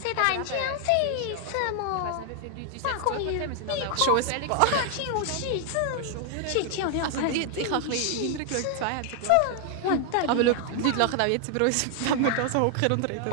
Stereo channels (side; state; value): both; different; correlation 0.00